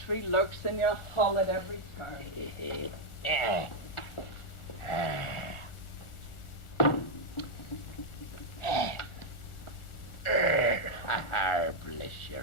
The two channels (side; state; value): right; late; 1.4 ms